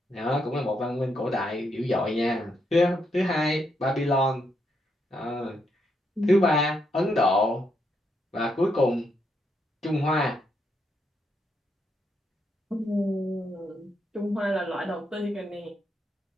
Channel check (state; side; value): normal; both; correlation 0.79